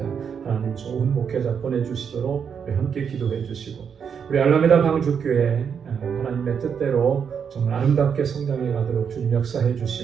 하나님 좋은 목회자 보내주시도록 우리 함께 기도해 주시고, 우리 알라메다 방주교회 하나님의 뜻대로 정말 아름답게 성장해 가도록 주님 역사해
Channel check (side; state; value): left; quieter; 7.1 dB